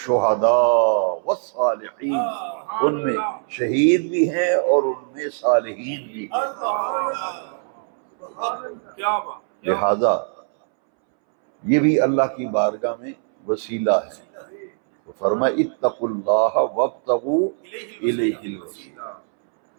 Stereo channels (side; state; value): left; silent; 64 dB below the other